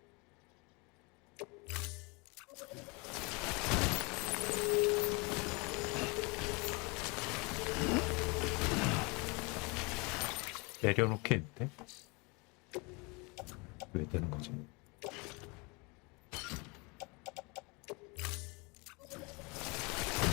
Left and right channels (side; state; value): right; quieter; 28.7 dB